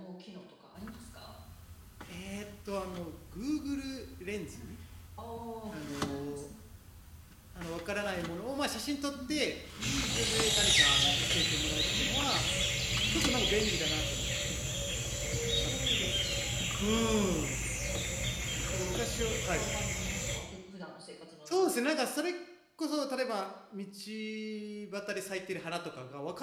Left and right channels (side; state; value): both; identical; correlation 1.00